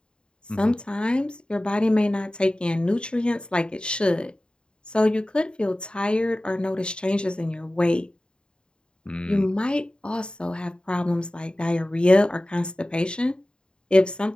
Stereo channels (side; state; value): right; late; 0.051 ms